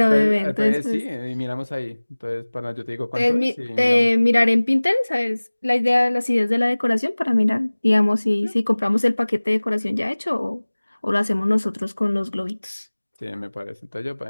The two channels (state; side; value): inverted; both; correlation -1.00